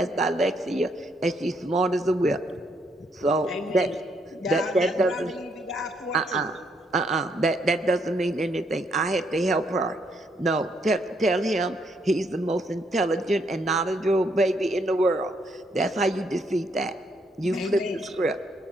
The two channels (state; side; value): normal; both; correlation 0.73